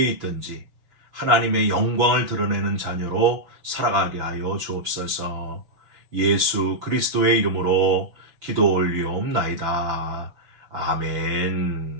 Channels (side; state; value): left; late; 5.6 ms